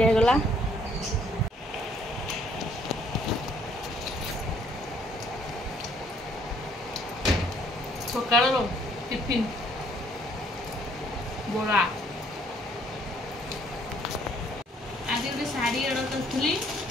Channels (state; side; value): normal; both; correlation 0.64